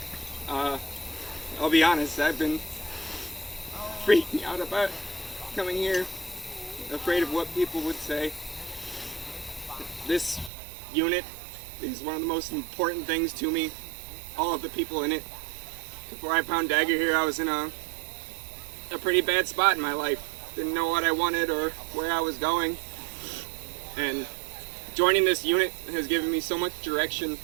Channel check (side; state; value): left; drops out; at 10.5 s